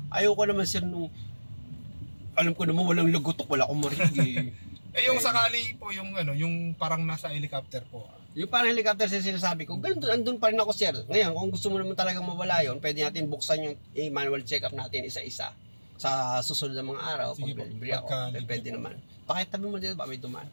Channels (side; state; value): both; inverted; correlation -1.00